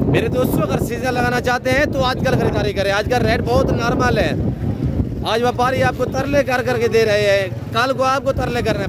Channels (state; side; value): identical; both; correlation 1.00